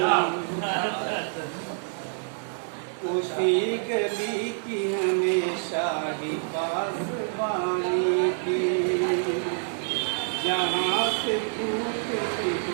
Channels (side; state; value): left; silent; 60 dB below the other